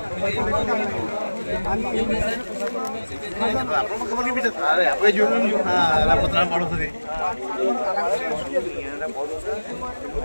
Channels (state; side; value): inverted; both; correlation -1.00